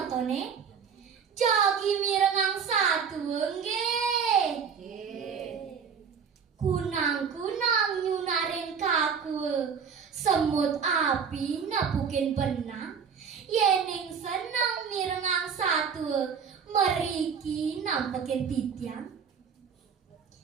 motone jagi mirengang satu nggih. Kunang-kunang nyunaring kaku semut api nepukin benang yening seneng mirengang satu meriki nampekin titiang.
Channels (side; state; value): left; quieter; 6.6 dB